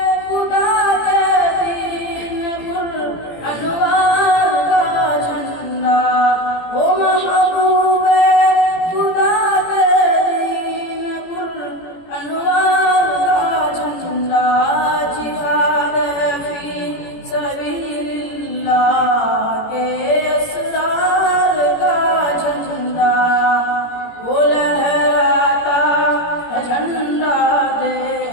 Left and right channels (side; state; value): right; late; 18 ms